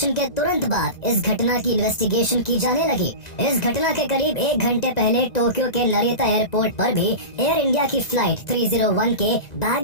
के तुरंत बाद इस घटना की इन्वेस्टिगेशन की जाने लगी। इस घटना के करीब 1 घंटे पहले टोक्यो के नरिता एयरपोर्ट पर भी एयर इंडिया की फ्लाइट 301 के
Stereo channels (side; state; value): right; late; 1.9 ms